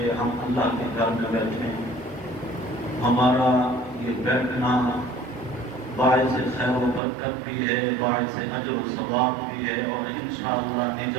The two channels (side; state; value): left; drops out; at 7.0 s